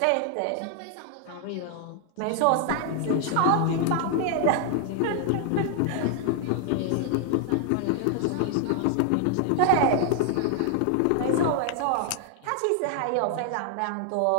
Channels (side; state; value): both; different; correlation 0.00